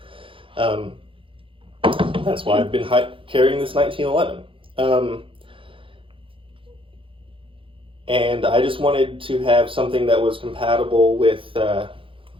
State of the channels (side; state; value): left; late; 0.25 ms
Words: That's why I've been carrying this 1911. And I just wanted to have something that was compatible with